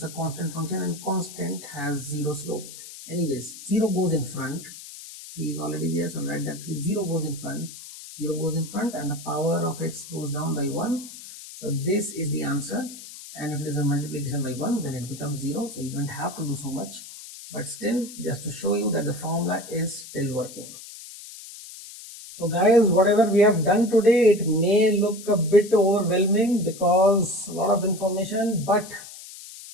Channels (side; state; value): left; noise; hiss, 15 dB below the sound